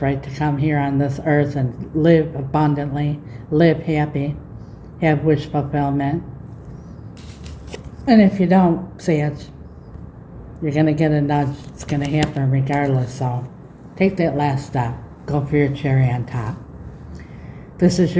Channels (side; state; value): both; identical; correlation 1.00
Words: to come here on this earth and live abundantly, live happy, have wish fulfillment. And if you don't see it, you're going to get a nudge. It's going to happen regardless. So take that last step. Go for your cherry on top. This is